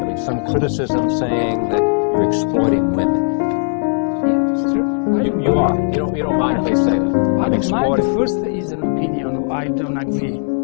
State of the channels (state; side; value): silent; right; digital silence